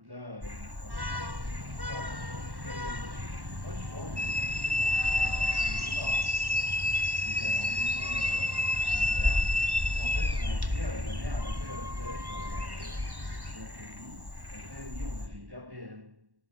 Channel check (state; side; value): late; left; 1.1 ms